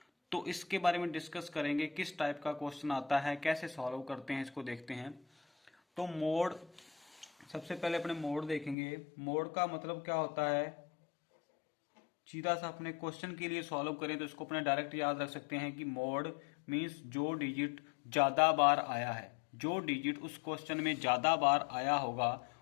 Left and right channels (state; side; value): drops out; right; at 8.8 s